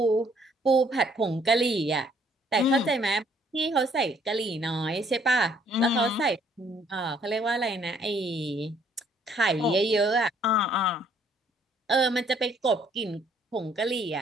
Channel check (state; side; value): normal; both; correlation 0.64